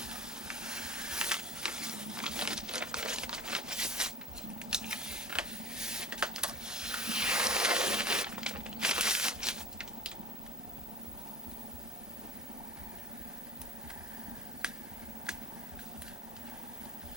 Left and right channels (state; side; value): normal; both; correlation 0.38